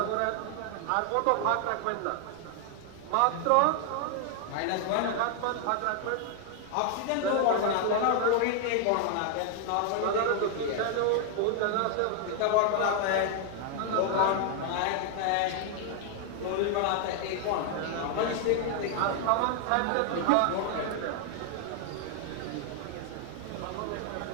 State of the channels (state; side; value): different; both; correlation 0.00